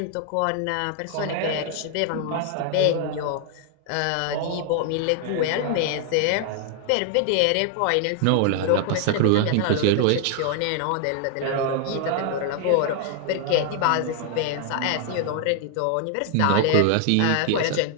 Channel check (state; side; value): different; both; correlation 0.00